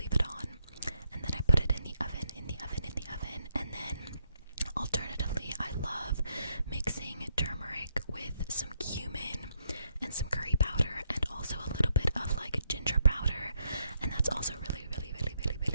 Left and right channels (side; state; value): both; inverted; correlation -0.76